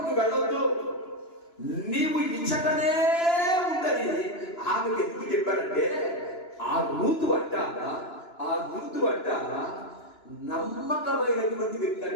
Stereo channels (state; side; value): late; right; 2.9 ms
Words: వెళ్ళొద్దు, నీవు ఇచ్చటనే ఉందని ఆమెకు ఎందుకు చెప్పాడంటే ఆ రూతు అంట నమ్మకమైనటువంటి వ్యక్తి